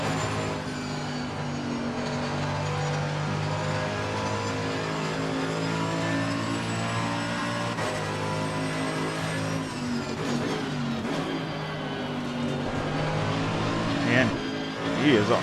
Man, he is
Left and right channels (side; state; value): both; identical; correlation 1.00